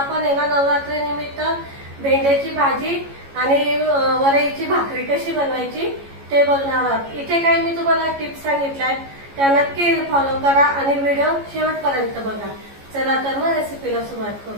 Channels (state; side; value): late; left; 14 ms